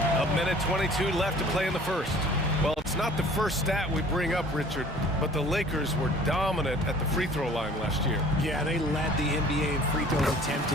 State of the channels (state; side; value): normal; both; correlation 0.49